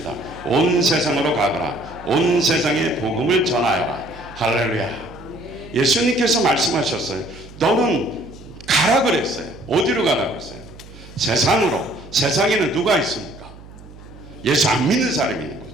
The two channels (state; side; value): noise; right; hum, 19 dB below the sound